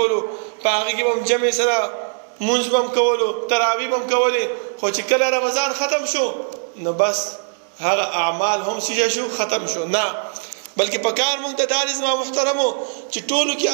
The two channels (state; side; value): silent; left; 65 dB below the other